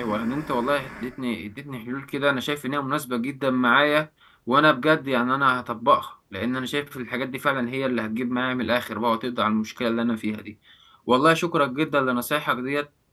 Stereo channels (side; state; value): both; identical; correlation 1.00